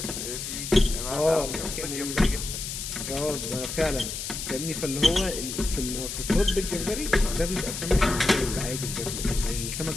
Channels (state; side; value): noise; left; hiss, 6 dB below the sound